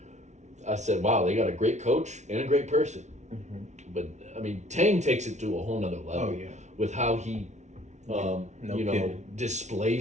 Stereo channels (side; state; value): left; late; 0.33 ms